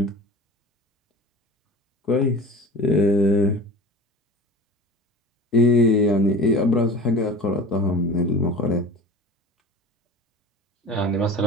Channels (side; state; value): both; normal; correlation 0.37